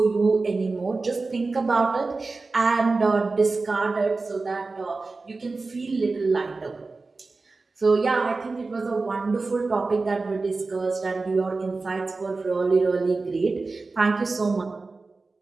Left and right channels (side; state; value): left; quieter; 3.8 dB